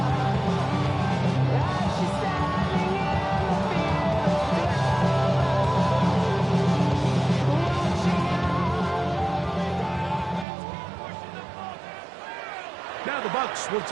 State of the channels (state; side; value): drops out; left; at 10.5 s